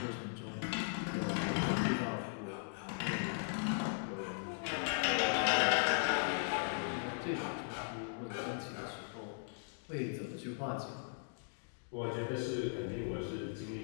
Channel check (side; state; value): right; silent; digital silence